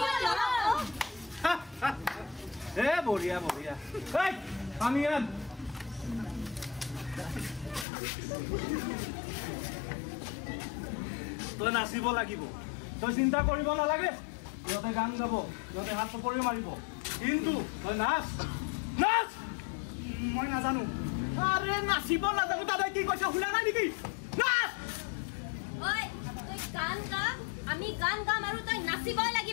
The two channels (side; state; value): right; drops out; at 7.9 s